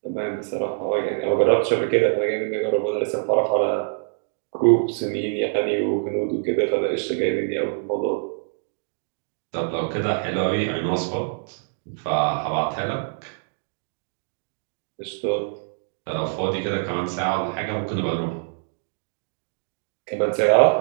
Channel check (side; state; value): left; silent; digital silence